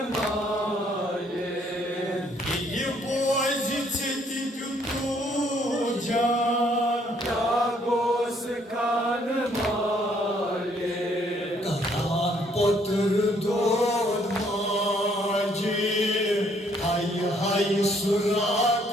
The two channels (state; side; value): normal; both; correlation 0.66